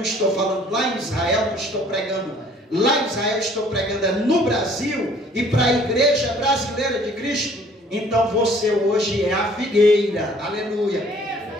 estou falando lá em Israel, não estou pregando lá em Israel, estou pregando no Brasil e para a igreja brasileira de Cristo, então você hoje é a figueira, aleluia.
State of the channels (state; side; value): normal; both; correlation 0.57